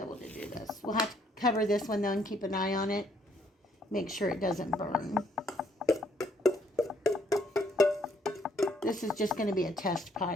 to do this. We'll have to cover this one though and keep an eye on it. Make sure it doesn't burn. This is just going to be a test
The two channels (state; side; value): normal; both; correlation 0.67